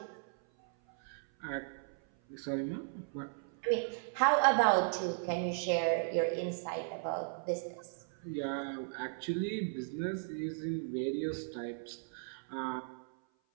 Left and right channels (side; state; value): left; silent; 54 dB below the other